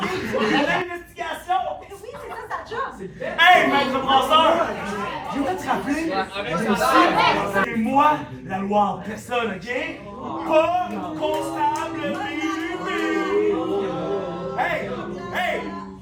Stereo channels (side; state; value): both; identical; correlation 1.00